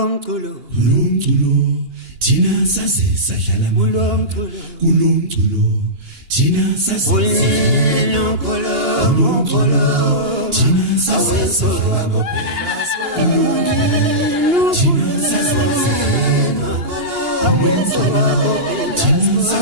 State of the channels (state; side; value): late; left; 2.8 ms